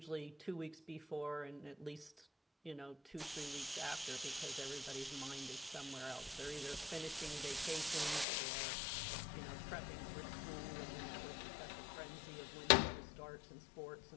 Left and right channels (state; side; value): drops out; right; at 8.2 s